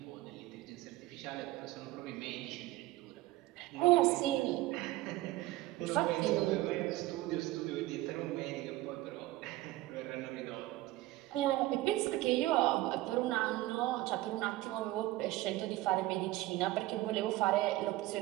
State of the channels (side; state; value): left; quieter; 17.4 dB